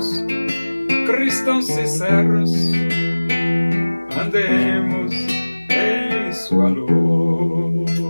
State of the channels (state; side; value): inverted; both; correlation -1.00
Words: cristãos sinceros, andemos em sua luz.